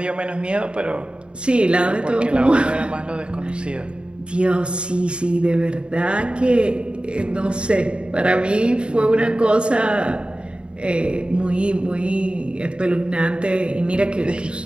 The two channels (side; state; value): left; late; 0.054 ms